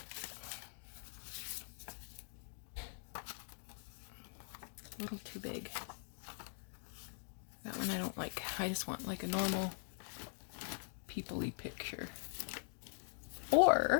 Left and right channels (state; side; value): silent; right; digital silence